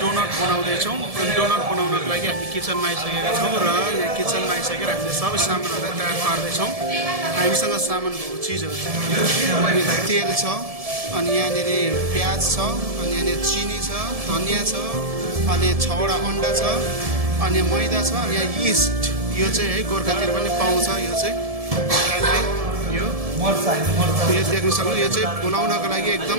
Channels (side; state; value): left; late; 1.7 ms